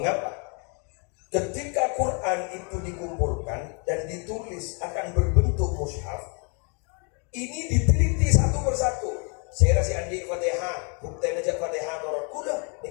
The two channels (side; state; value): right; quieter; 36.6 dB